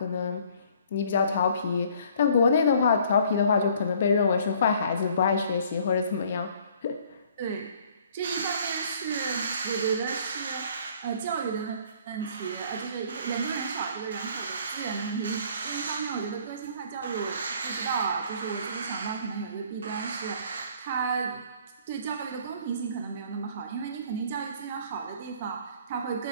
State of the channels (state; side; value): inverted; both; correlation -0.57